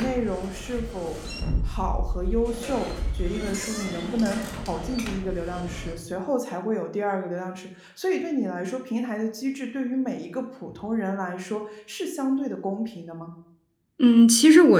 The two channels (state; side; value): identical; both; correlation 1.00